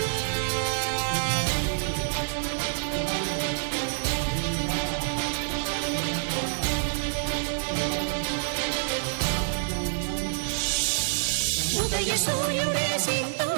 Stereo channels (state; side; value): silent; left; digital silence